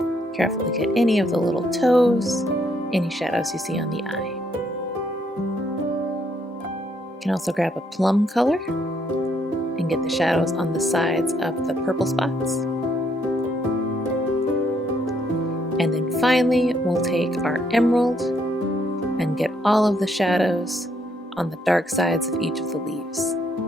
Carefully get any of the little toes, any shadows you see on the eye. You can also grab a plum color and get the shadows on the sides of the purple spots. And then finally, we'll take our emerald and get all of the shadows on the dark sides of each of the leaves.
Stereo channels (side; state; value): both; normal; correlation 0.72